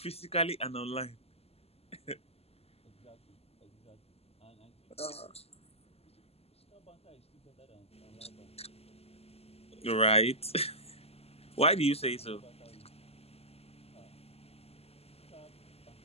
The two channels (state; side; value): late; right; 0.29 ms